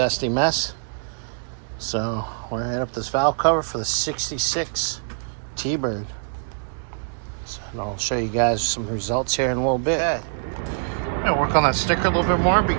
mess. So, we're going to hit up this valve cover for the 66 T-Bird. So, and I'll show you guys some results here in a little bit. Okay. I'm going to work on that sticker a little bit more, but you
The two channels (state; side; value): silent; left; digital silence